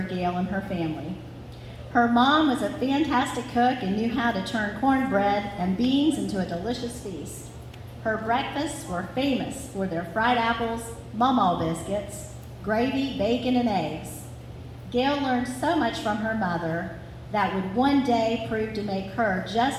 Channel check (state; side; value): identical; both; correlation 1.00